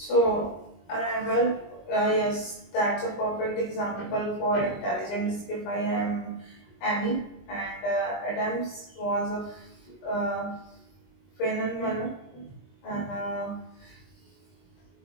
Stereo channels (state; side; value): late; right; 22 ms